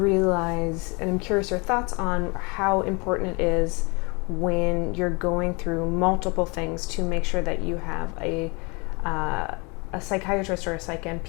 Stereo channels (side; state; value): right; quieter; 29.8 dB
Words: and I'm curious your thoughts on how important it is when you're going through multiple things to make sure that you have a psychiatrist or a psych